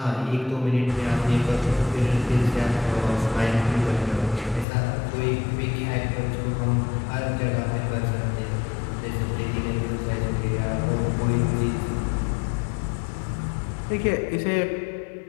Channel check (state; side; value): drops out; right; at 4.7 s